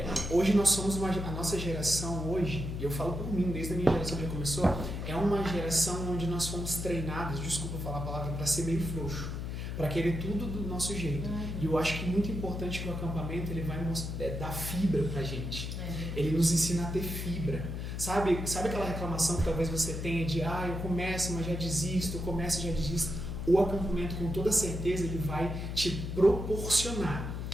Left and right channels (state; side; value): noise; left; hum, 4 dB below the sound